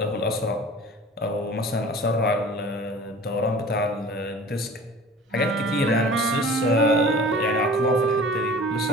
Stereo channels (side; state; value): both; normal; correlation 0.43